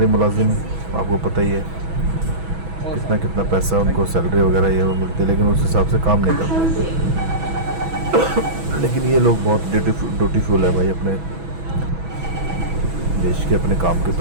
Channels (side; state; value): left; late; 6.1 ms